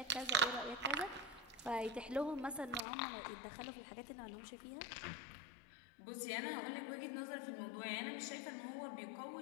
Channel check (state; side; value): drops out; right; at 2.8 s